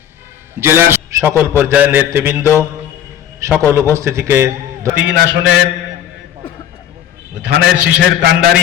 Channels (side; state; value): right; quieter; 10.4 dB